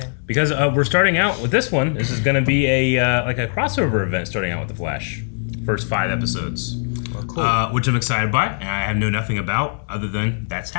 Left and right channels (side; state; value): right; silent; digital silence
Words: Because we're starting out with this one. This is going to be a like a crossover event starting out with The Flash. First 5 episodes. Well, cool. Which I'm excited by, and I know nothing about other than that's